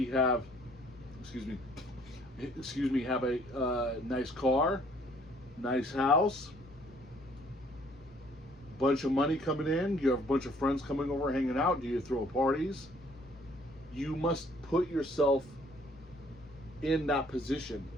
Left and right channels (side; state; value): both; normal; correlation 0.60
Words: have, have a nice car, nice house, bunch of money coming in? Do you have a bunch of friends coming over, hanging out? Do you throw parties? You must put yourself in that position.